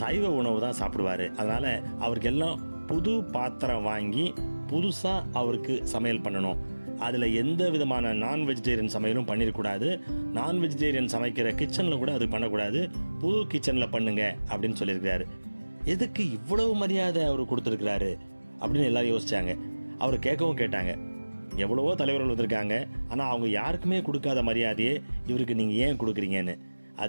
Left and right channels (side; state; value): both; inverted; correlation -1.00